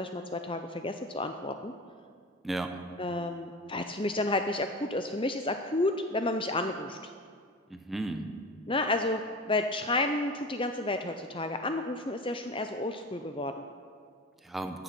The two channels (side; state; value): both; normal; correlation 0.32